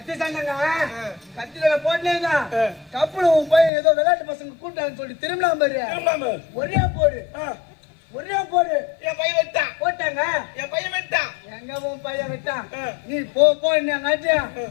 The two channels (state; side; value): drops out; right; at 3.7 s